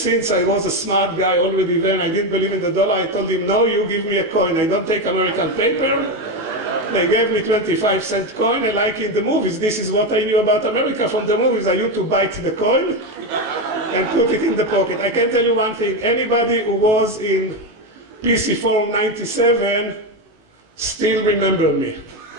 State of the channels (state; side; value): late; left; 19 ms